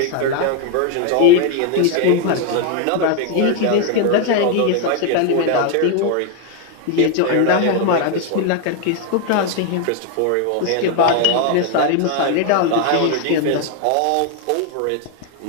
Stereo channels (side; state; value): both; different; correlation 0.01